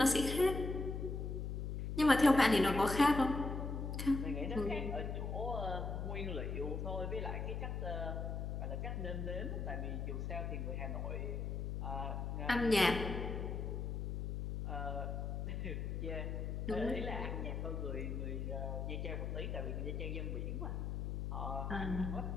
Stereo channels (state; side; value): noise; left; hum, 3 dB below the sound